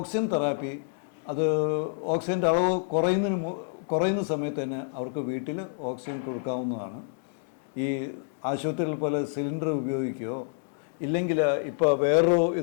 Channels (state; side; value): silent; right; digital silence